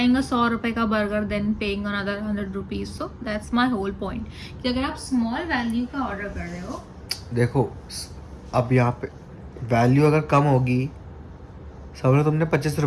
a 100 रुपए का burger then paying another 100 rupees. So that's my whole point कि अगर आप small value का order कर रहे हो, देखो अब यहाँ पे वैल्यू अगर कम होगी, समझो तुमने 25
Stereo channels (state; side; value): identical; both; correlation 1.00